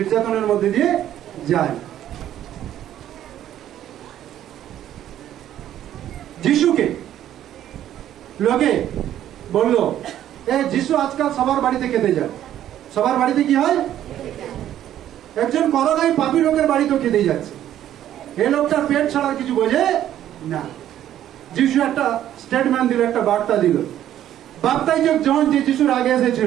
মধ্যে দিয়ে যাই। যিশুকে লোকে বলল, যিশু আজকাল সবার বাড়িতে খেতে যায়। সবার বাড়িতে কি হয়? একজন করোনায় পাপী লোকের বাড়িতেও খেতেই যাচ্ছে। এই লোকটার পেট ছাড়া কিছু বোঝে না। যিশু একটা স্টেটমেন্ট দিল, একটা বার্তা দিল। বাপ্তাইজক জন যে যিশুর আগে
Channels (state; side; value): quieter; left; 11.6 dB